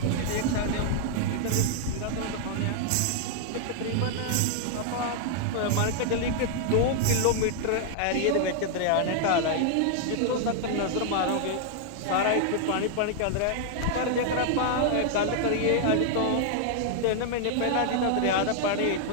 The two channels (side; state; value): both; different; correlation -0.01